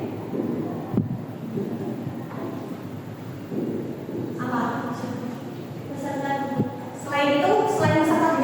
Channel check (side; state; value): both; identical; correlation 1.00